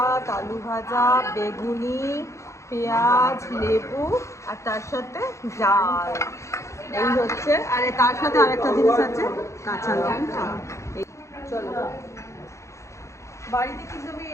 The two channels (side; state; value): right; late; 0.14 ms